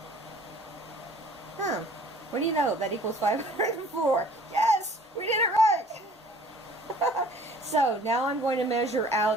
What do you know? That equals 504. Yes! We did it right! So now I'm going to measure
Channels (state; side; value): normal; both; correlation 0.52